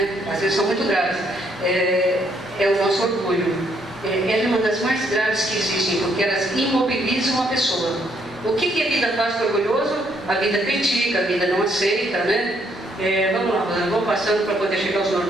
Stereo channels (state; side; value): normal; both; correlation 0.71